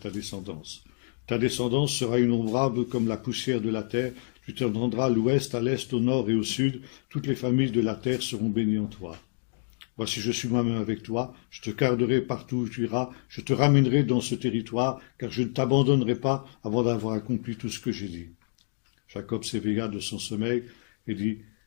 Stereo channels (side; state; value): right; silent; digital silence